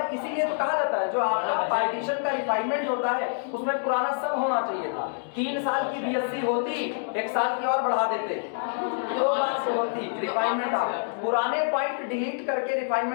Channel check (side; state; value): right; silent; digital silence